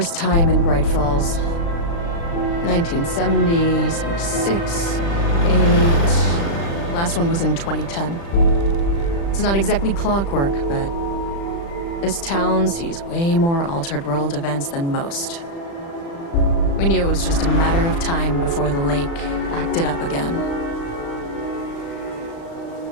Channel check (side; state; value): right; late; 35 ms